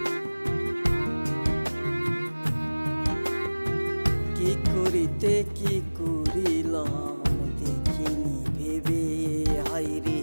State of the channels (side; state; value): both; inverted; correlation -1.00